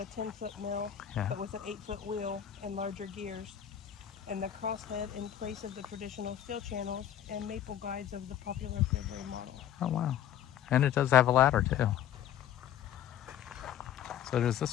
10-foot mill, but with an 8-foot wheel and larger gears, and the crosshead in place of the traditional steel channels and maple guides of the popular Fairbury model. Oh wow. And it does have a ladder too. So does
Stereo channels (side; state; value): right; quieter; 10.5 dB